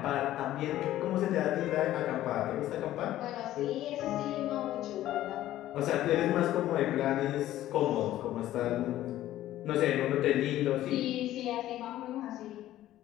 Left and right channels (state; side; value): quieter; right; 13.9 dB